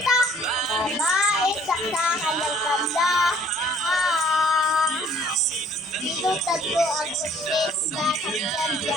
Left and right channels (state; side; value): noise; right; rumble, 28 dB below the sound